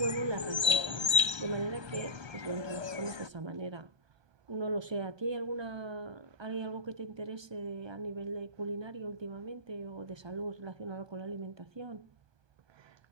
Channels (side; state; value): left; late; 1.2 ms